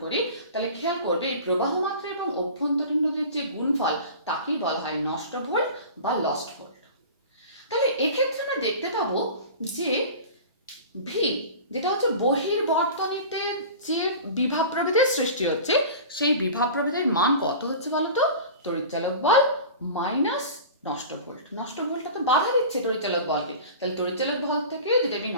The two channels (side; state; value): both; inverted; correlation -0.36